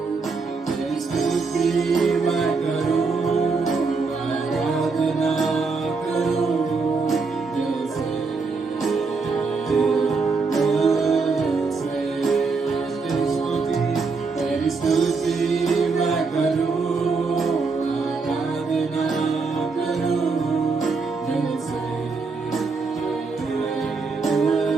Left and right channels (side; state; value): left; quieter; 4.4 dB